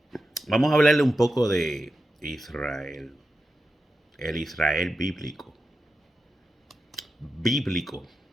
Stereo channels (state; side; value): normal; both; correlation 0.90